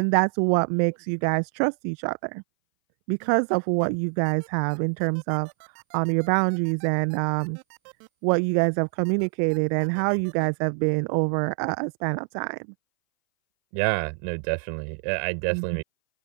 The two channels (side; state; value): left; silent; 60 dB below the other